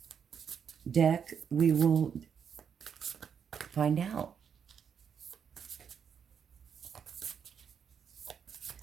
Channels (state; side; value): quieter; left; 7.4 dB